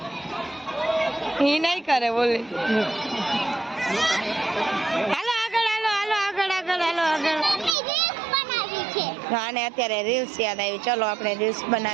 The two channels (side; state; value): left; drops out; at 7.8 s